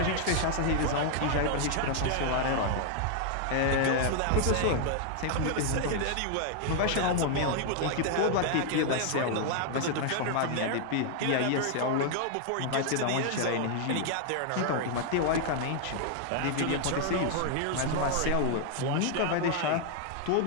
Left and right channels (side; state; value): both; different; correlation 0.00